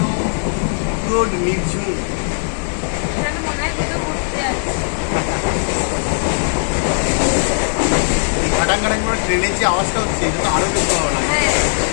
পুরো নির্ঝুম। এখানে মনে হয় কোথাও ঘুরতে যাচ্ছি। এই ঘাটাং ঘাটাং করে ট্রেনের যে আওয়াজটা হচ্ছে, এটা তো আরো বেশি ভালো লাগে। হ্যাঁ,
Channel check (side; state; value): right; silent; digital silence